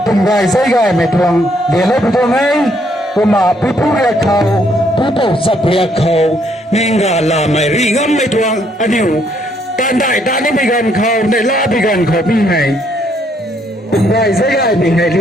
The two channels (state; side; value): normal; both; correlation 0.70